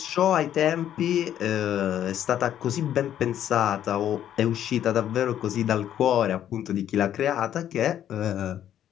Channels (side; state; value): right; quieter; 10.7 dB